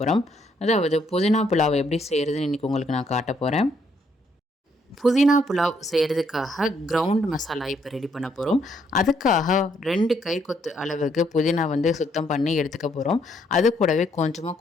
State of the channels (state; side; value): normal; both; correlation 0.71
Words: அதாவது புதினா புலாவ் எப்படி செய்கிறதுன்னு இன்றைக்கி உங்களுக்கு நான் காட்ட போகிறேன். புதினா புலாவ் செய்கிறதுக்காக கிரவுண்ட் மசாலா இப்போ ரெடி பண்ண போகிறோம். அதுக்காக 2 கை கொத்து அளவுக்கு புதினா வந்து சுத்தம் பண்ணி எடுத்துக்க போகிறோம். அது கூடவே கொஞ்சமாக